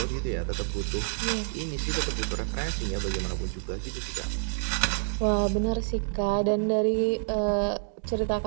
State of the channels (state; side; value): silent; left; digital silence